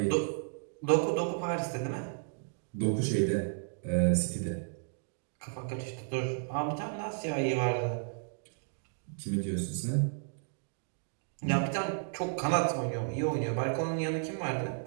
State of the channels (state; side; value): silent; left; digital silence